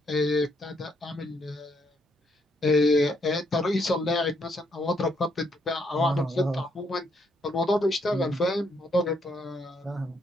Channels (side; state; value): both; normal; correlation 0.73